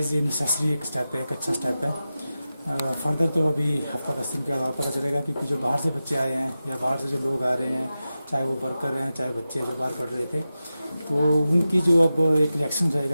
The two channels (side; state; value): both; inverted; correlation -0.93